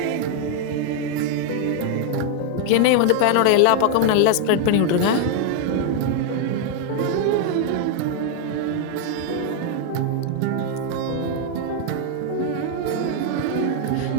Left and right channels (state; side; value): different; both; correlation 0.00